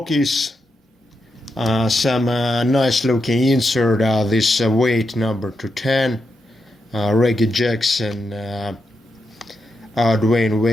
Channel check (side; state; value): both; normal; correlation 0.85